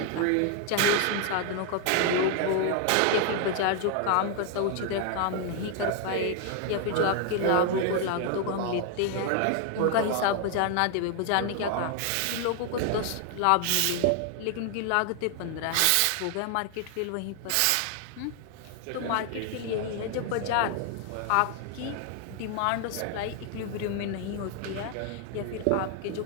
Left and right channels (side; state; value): both; different; correlation 0.00